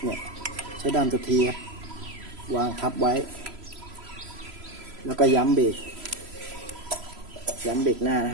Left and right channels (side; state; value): left; late; 3.0 ms